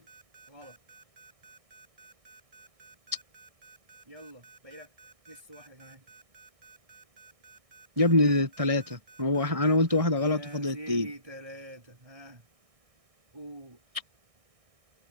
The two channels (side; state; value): left; late; 1.6 ms